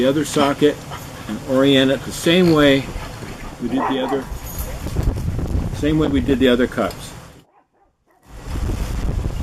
other socket and orient it the same way we did the other cups.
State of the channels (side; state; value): both; identical; correlation 1.00